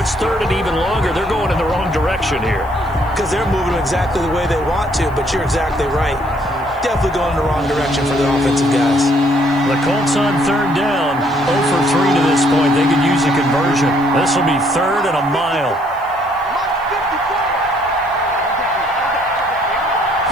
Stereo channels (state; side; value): noise; left; hiss, 29 dB below the sound